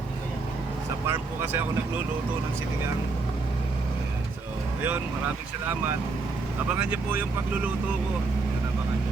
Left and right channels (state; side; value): quieter; left; 3.9 dB